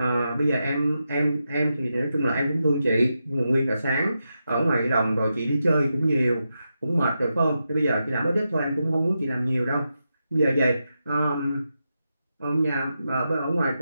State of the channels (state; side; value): inverted; both; correlation -0.88